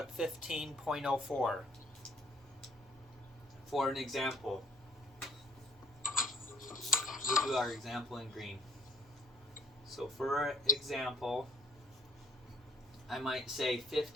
15.04 for an example? We'll do our example in green. So for example, I might say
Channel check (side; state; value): both; normal; correlation 0.60